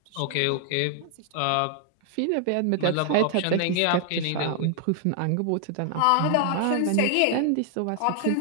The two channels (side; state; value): both; different; correlation 0.00